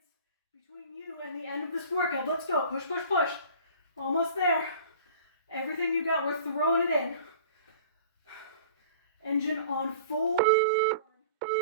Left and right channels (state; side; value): inverted; both; correlation -0.44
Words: between you and the end of this workout. Let's go. Push, push, push. Almost there. Everything you got, we're throwing it in. Engine on full. Well